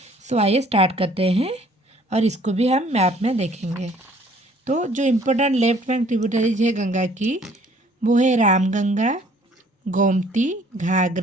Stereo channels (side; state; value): both; normal; correlation 0.58